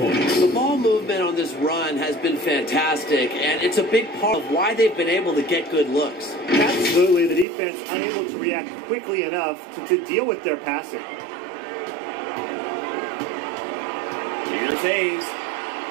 The ball movement on this run has been fantastic, and it's a big part of why they've been able to get good looks. Absolutely, the defense unable to react quickly enough to deal with their passing. Here's Hayes.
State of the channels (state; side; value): drops out; left; at 7.5 s